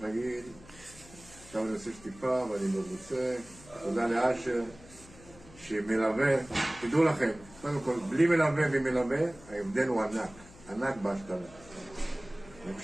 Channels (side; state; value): left; noise; hum, 21 dB below the sound